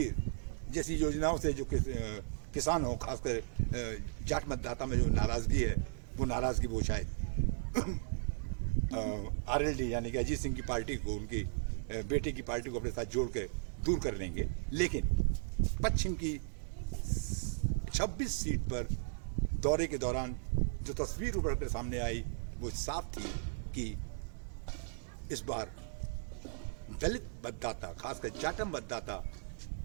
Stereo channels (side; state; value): left; silent; digital silence